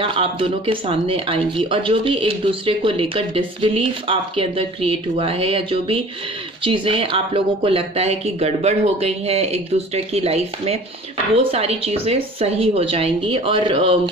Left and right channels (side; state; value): both; normal; correlation 0.45